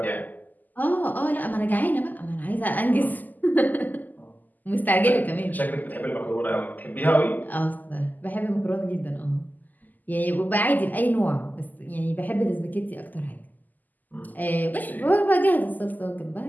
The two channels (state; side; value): late; right; 0.083 ms